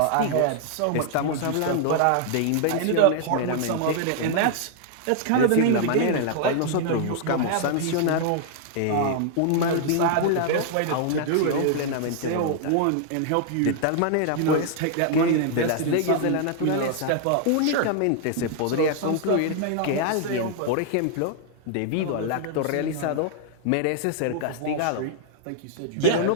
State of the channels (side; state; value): both; different; correlation 0.00